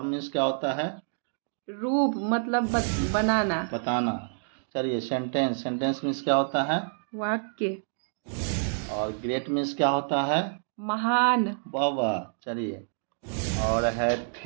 मीन्स क्या होता है? रूप मतलब बनाना। बताना। चलिए सेंटेंस सेंटेंस मीन्स क्या होता है? वाक्य। और ग्रेट मीन्स क्या होता है? महान। वाह वाह। चलिए और है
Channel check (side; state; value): left; silent; digital silence